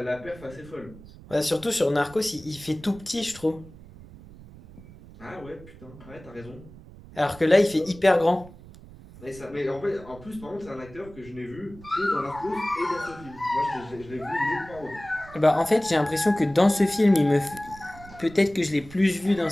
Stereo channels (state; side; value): noise; right; rumble, 19 dB below the sound